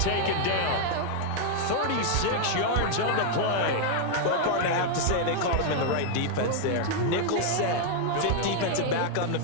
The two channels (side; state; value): both; different; correlation 0.00